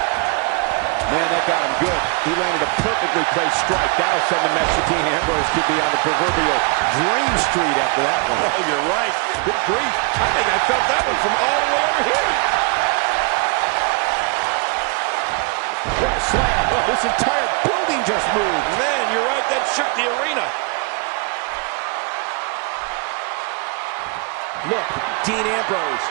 Man, that got him good. He landed a perfectly placed strike. That'll send a message to Dean Ambrose could be on the proverbial dream street after that one. Oh, you're right. Good grief. I think I felt that one from all the way over here. What a slam. Oh, this entire building just moved. Man, you're right. That shook the arena. Look, Dean Ambrose.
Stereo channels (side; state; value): left; quieter; 32.1 dB